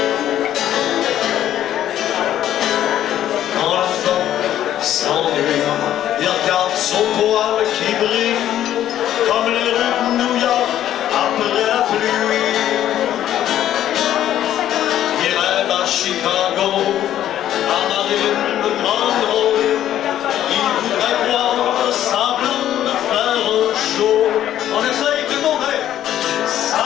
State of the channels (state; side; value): quieter; right; 11.7 dB